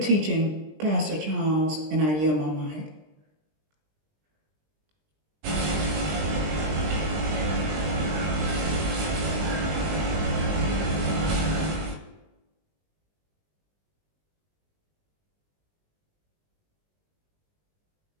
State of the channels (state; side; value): late; left; 20 ms